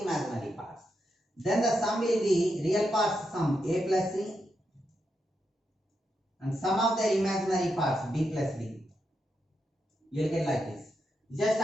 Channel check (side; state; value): both; normal; correlation 0.84